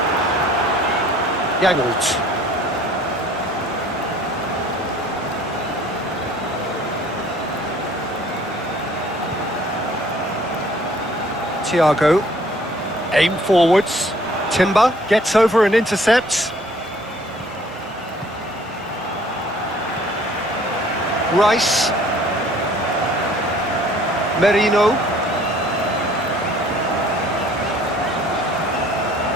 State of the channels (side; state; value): both; normal; correlation 0.55